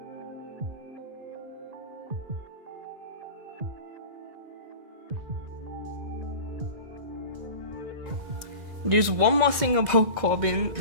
There's one more thing about Corbin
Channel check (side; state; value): left; late; 2.0 ms